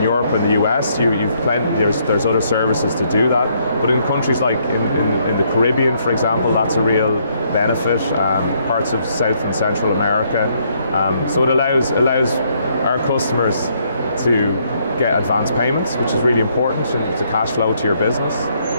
Europe and the US, there's other services to do that. But in countries like in the Caribbean, for example, that's a real benefit. Parts of South and Central America. So it allows our customers to get advance payments, which is really important to cash flow to your business,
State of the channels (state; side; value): inverted; both; correlation -0.71